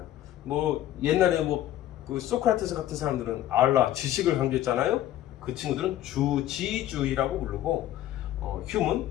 옛날에 그 소크라테스 같은 사람들은 알라, 지식을 강조했잖아요. 그 친구들은 주지주의라고 부르고 휴메는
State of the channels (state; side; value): quieter; right; 13.0 dB